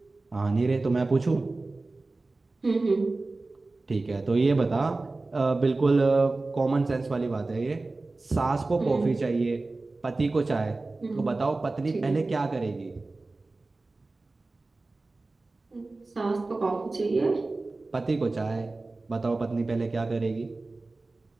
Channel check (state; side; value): quieter; left; 3.3 dB